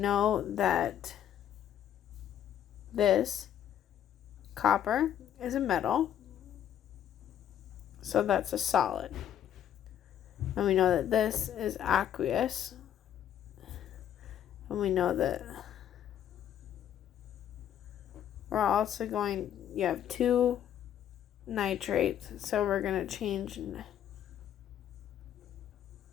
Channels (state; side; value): quieter; right; 10.3 dB